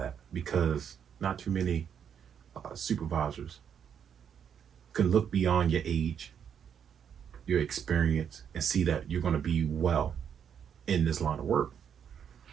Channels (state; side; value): quieter; left; 8.1 dB